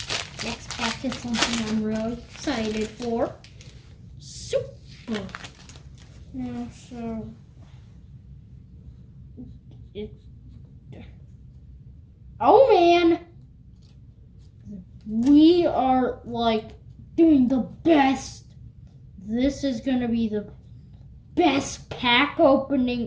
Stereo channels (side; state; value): both; identical; correlation 1.00